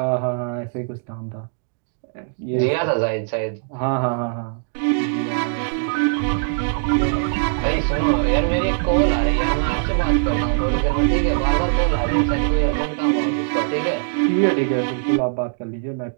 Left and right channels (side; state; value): left; silent; digital silence